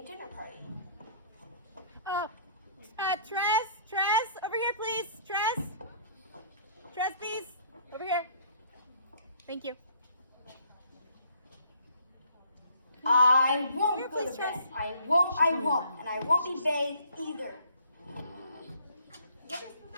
dinner party. Tress, over here, please. Tress, please, over here. Thank you. I won't Here, go to please, Tress. bed. I won't, and I won't be bathed either. What is the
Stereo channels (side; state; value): both; inverted; correlation -0.59